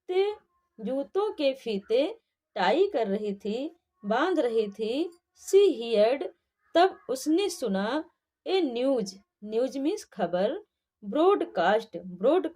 जूतों के फीते टाई कर रही थी, बांध रही थी। She heard, तब उसने सुना। ए न्यूज, न्यूज मीन्स खबर। ब्रॉडकास्ट,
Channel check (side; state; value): both; identical; correlation 1.00